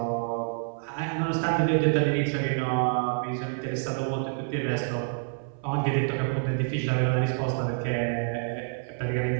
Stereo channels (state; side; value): silent; left; 60 dB below the other